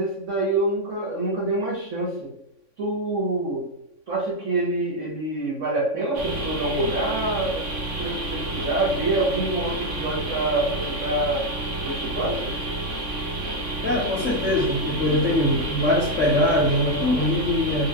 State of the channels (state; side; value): late; left; 3.6 ms